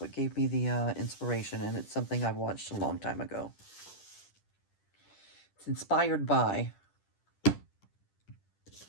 gave me the inspiration, and it's something I've watched a long time ago. It's inspired by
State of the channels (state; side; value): late; right; 10 ms